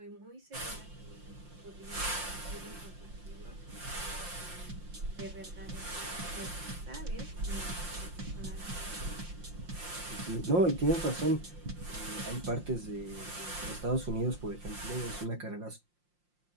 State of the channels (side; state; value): left; late; 5.7 ms